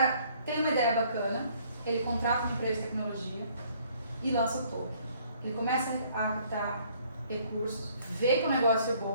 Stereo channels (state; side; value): inverted; both; correlation -0.61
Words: tem uma ideia bacana, ele contrata uma empresa de tecnologia e lança o token. Ele começa a captar recursos, vê que o negócio é